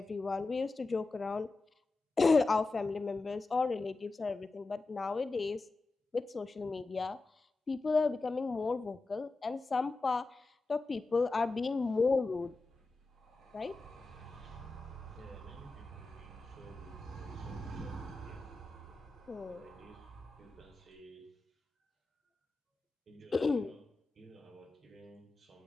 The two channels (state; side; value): quieter; right; 3.5 dB